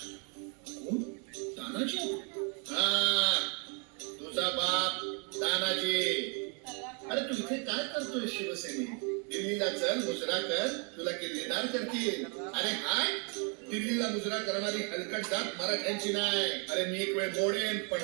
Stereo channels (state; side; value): quieter; left; 36.7 dB